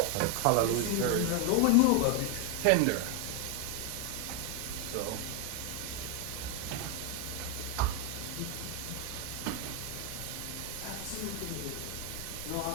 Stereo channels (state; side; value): different; both; correlation 0.01